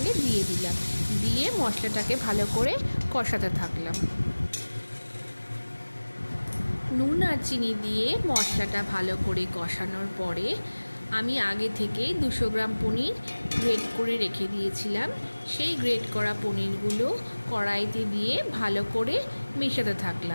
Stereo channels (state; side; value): inverted; both; correlation -1.00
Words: দিয়ে দিলাম। দিয়ে মশলাটাকে ভালো করে কষাতে থাকলাম। নুন আর চিনি দিয়ে মশলাটা ভালো করে কষানোর পরে আমি আগে থেকেই 200 গ্রাম পনির গ্রেট করে রেখে দিয়েছিলাম। সেই গ্রেট করা পনিরগুলো কড়াইতে দিয়ে ভালো করে মেশাতে